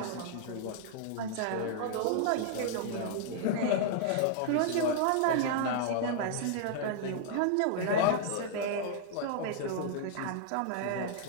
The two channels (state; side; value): different; both; correlation -0.01